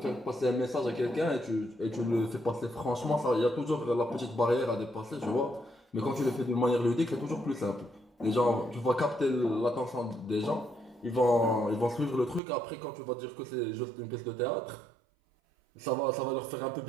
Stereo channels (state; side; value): drops out; left; at 12.4 s